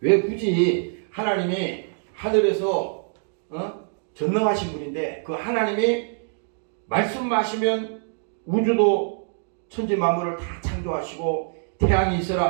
왜 굳이 하나님이 하늘에서 전능하신 분인데 그 하나님이 말씀하시면 우주도 천지 만물을 다 창조하시고 태양이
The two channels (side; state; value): left; silent; digital silence